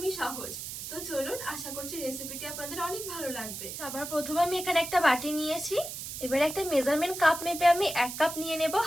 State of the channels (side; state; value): right; noise; hiss, 8 dB below the sound